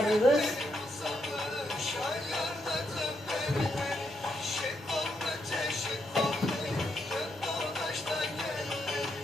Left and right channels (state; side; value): normal; both; correlation 0.80